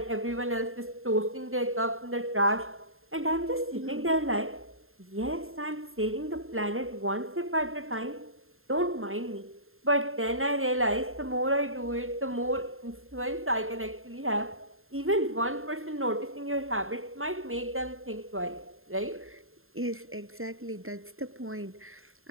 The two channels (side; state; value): left; late; 0.61 ms